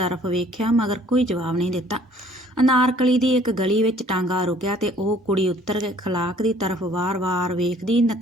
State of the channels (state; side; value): normal; both; correlation 0.56